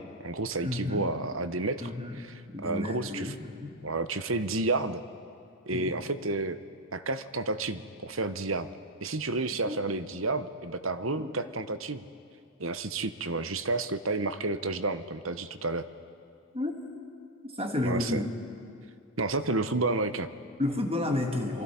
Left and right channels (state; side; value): normal; both; correlation 0.04